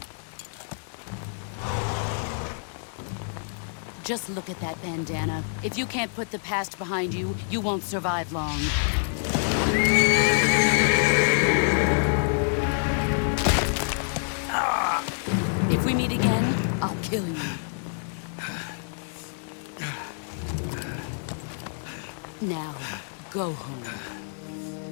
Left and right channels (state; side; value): silent; right; 60 dB below the other